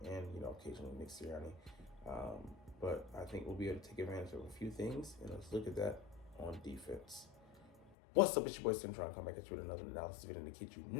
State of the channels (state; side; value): drops out; right; at 8.0 s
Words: and occasionally Nick Sirianni. But I think we'll be able to take advantage of a few things, and let's look at that on defense. What's up, it's your boy Tim trying to come back at you with another analysis video to kid you